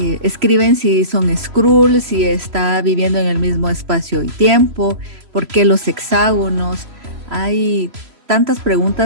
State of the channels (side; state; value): left; late; 3.0 ms